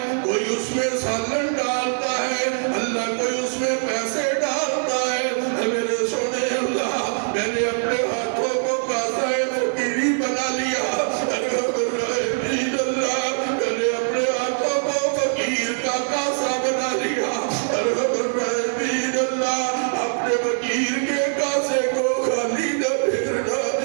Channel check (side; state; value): left; silent; 58 dB below the other